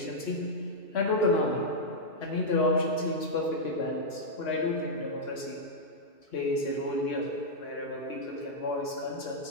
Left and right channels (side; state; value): right; late; 3.0 ms